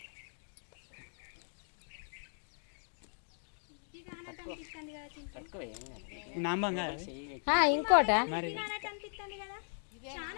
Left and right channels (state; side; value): silent; right; 53 dB below the other